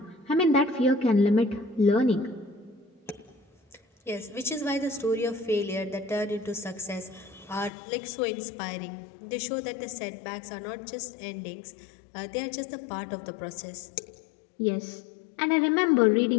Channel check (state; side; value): drops out; right; at 7.7 s